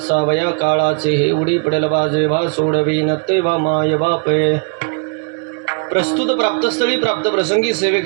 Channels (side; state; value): left; quieter; 39.1 dB